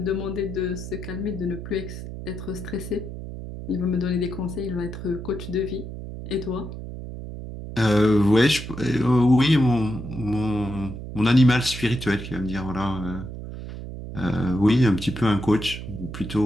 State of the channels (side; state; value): right; noise; hum, 9 dB below the sound